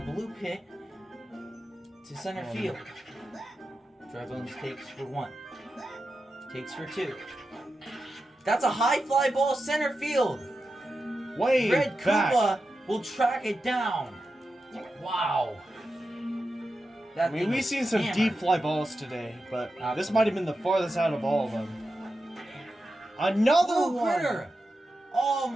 blue pit to center field. Dry Bones takes for 1. Takes for 2. That's a high fly ball center field. Way Red back. Koopa will track it down. Wow. That I mean, thing we've was seen some hammered. deep fly balls today, but this Absolutely. might have been the farthest out of all of them. Another Blue one! critter. Oh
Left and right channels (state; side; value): normal; both; correlation 0.90